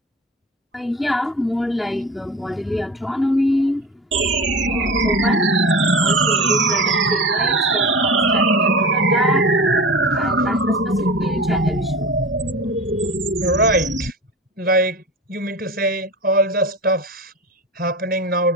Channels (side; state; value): both; normal; correlation 0.32